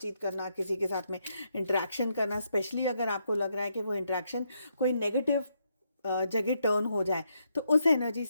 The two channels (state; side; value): inverted; both; correlation -0.78